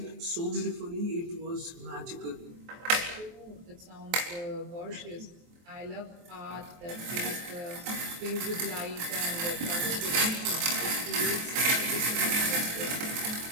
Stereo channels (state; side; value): late; left; 23 ms